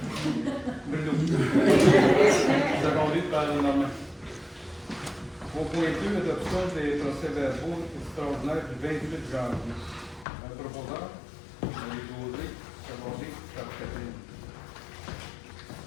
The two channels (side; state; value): right; drops out; at 10.2 s